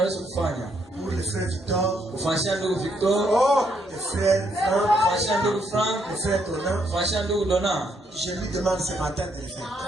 le frère Victor, le frère Franck, le frère Donna, je lui demande ce matin de le faire.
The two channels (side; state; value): both; normal; correlation 0.74